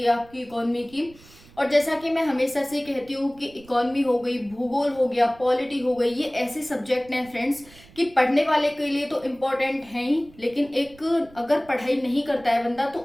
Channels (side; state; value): right; noise; rumble, 24 dB below the sound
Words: आपकी इकोनॉमी की। और जैसा कि मैं हमेशा से कहती हूँ कि इकोनॉमी हो गई, भूगोल हो गया, पॉलिटी हो गई, ये ऐसे सब्जेक्ट हैं फ्रेंड्स कि पढ़ने वाले के लिए तो इम्पोर्टेंट है ही, लेकिन एक अगर पढ़ाई नहीं करता है बंदा तो